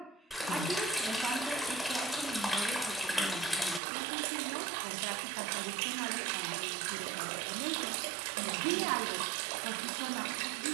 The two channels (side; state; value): left; drops out; at 3.8 s